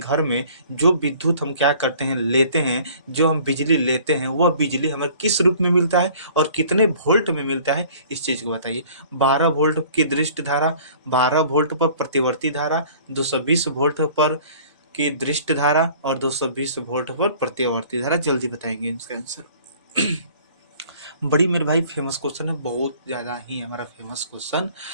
में जो विद्युत हम क्या करते हैं लेते हैं, जो हम बिजली लेते हैं वह बिजली हमें किस रूप में मिलता है और कितने वोल्ट में मिलता है, इस चीज को बताइए। 12 वोल्ट की दृष्ट धारा, 12 वोल्ट पर प्रतिवर्ती धारा, 220 वोल्ट पर की दृष्ट धारा और 220 वोल्ट पर प्रतिवर्ती धारा, जल्दी बताएंगे इसका आंसर। बड़ी मेरे भाई फेमस क्वेश्चन है, बहुत ज्यादा ही हमारा फेमस क्वेश्चन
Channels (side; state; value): both; inverted; correlation -0.51